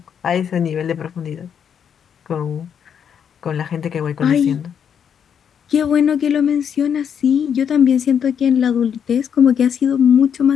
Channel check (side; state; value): right; quieter; 8.0 dB